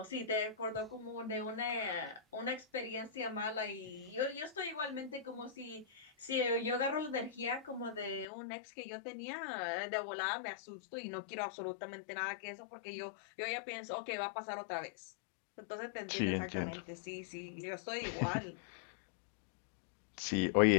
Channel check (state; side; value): drops out; right; at 8.2 s